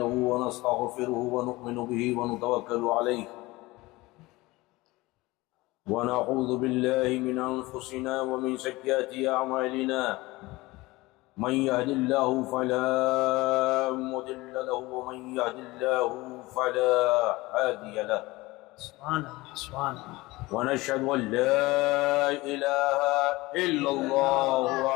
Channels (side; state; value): right; quieter; 20.9 dB